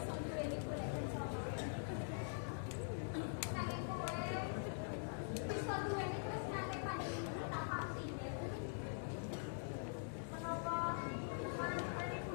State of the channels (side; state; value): right; silent; digital silence